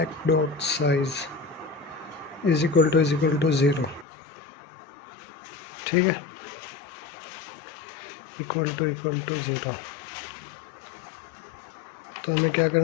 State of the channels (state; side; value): drops out; right; at 4.0 s